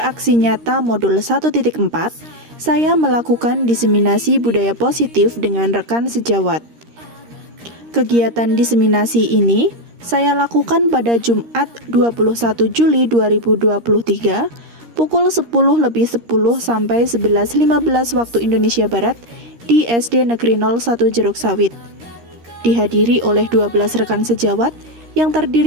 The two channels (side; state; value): left; late; 13 ms